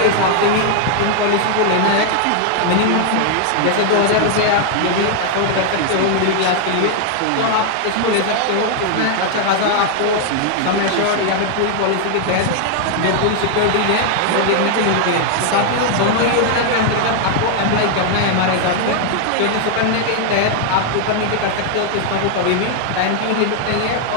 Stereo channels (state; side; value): different; both; correlation 0.00